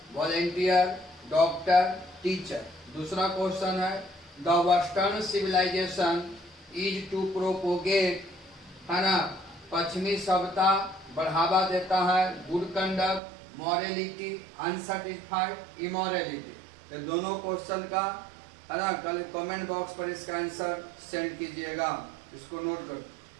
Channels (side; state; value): left; drops out; at 13.2 s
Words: volunteer, doctor, teacher. दूसरा क्वेश्चन है the western civilization is to propagate, है ना, पश्चिमी सभ्यता बढ़ावा देता है good conduct, morality, unsatisfied, immorality. तो दोनों क्वेश्चन का, है ना, कल कमेंट बॉक्स पर इसका आंसर सेंड कीजिएगा। इसको नोट कर।